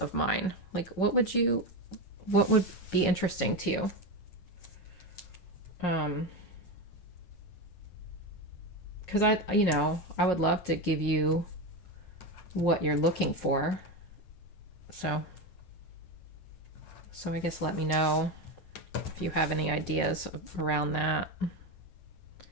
mine. Like what would be interesting to you? Because I would love to give you what you're looking for. So I guess let me know if you have any ideas around that.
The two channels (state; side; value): late; right; 9.0 ms